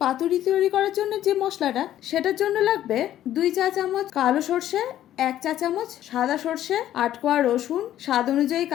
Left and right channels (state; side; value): quieter; right; 12.2 dB